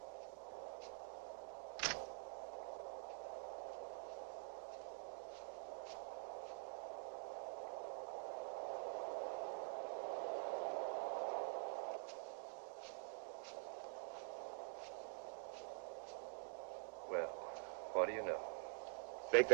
Well, what do you know? Think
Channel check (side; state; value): left; silent; digital silence